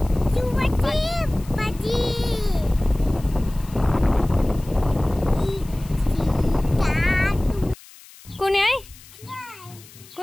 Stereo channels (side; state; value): left; noise; hiss, 22 dB below the sound